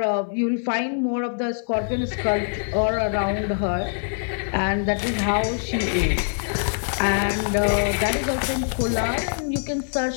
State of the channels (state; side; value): silent; right; digital silence